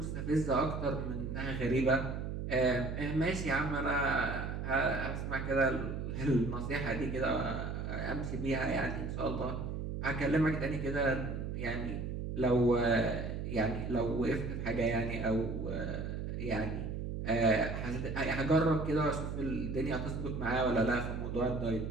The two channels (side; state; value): right; noise; hum, 4 dB below the sound